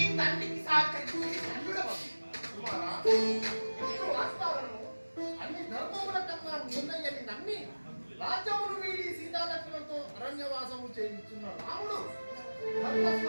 తండ్రికి సహకరించి ధన్యుడవగు. కుమారా, ఇప్పుడు వాస్తవాలను అన్ని ధర్మముల కన్నా ఉన్నయని నమ్మి రాజ్యమును వీడి సీతాలక్ష్మణులతో అరణ్యవాసము చేయించున్న రాముడు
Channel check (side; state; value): both; inverted; correlation -1.00